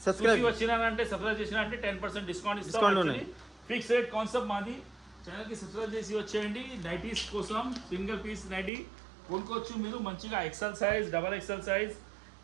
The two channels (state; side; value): drops out; left; at 8.7 s